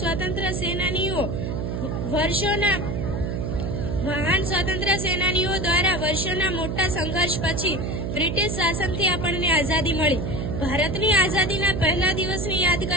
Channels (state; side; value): noise; right; hum, 2 dB below the sound